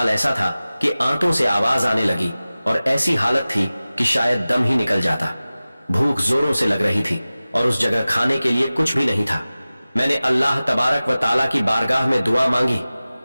ऐसा था कि आंतों से आवाज आने लगी और ऐसी हालत थी कि शायद दम ही निकल जाता। भूख जोरों से लग रही थी और उस जगह खाने के लिए कुछ भी नहीं था। मैंने अल्लाह तबारक व ताला की बारगाह में दुआ मांगी,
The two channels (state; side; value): inverted; both; correlation -0.97